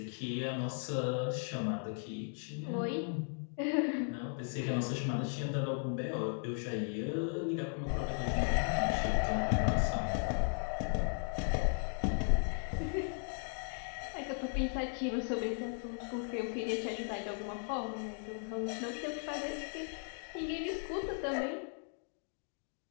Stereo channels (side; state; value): right; silent; 53 dB below the other